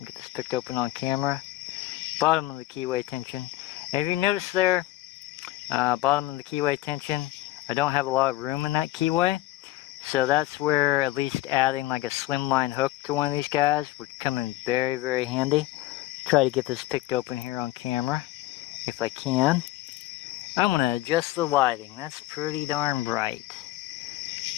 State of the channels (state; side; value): quieter; right; 16.8 dB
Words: get this picked open on camera. Bottom of the keyway tension. And if you notice there, bottom of the keyway tension, I don't have a lot of room in that keyway. So that's where at least adding like a slimline hook to one of these guys would come in very, very handy. Try to get this picked open here on camera, if I can. I'm going to adjust the lighting. That's pretty darn bright.